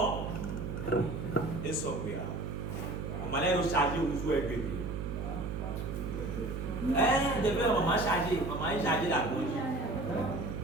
Et ça, on m'a l'air de charger ou jouer avec lui. Depuis maman chargé, maman est chargée la bougie.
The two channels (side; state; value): right; noise; hum, 4 dB below the sound